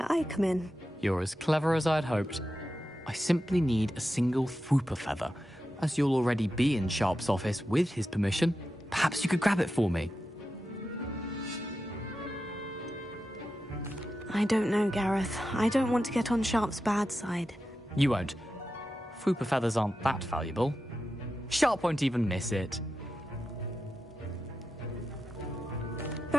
I come in. You're as clever as I'd hoped. I simply need a single Fwooper feather. As you'll already be in Sharp's office with his permission, perhaps you could grab it for me. I don't know, Gareth. I don't want to get on Sharp's bad side. You won't. Fwooper feathers aren't that valuable. Sharp won't even miss it.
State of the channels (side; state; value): both; normal; correlation 0.90